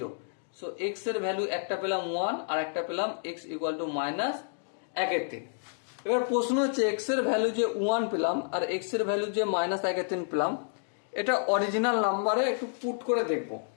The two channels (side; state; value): right; silent; digital silence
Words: So x এর ভ্যালু একটা পেলাম 1 আর একটা পেলাম x ইকুয়াল টু -1/3। এবার প্রশ্ন হচ্ছে, x এর ভ্যালু যে 1 পেলাম আর x এর ভ্যালু যে -1/3 পেলাম, এটা অরিজিনাল নাম্বারে একটু পুট করে দেখব।